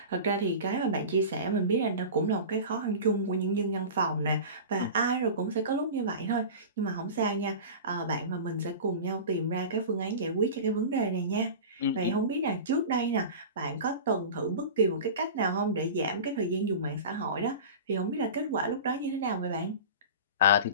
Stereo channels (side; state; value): both; inverted; correlation -0.32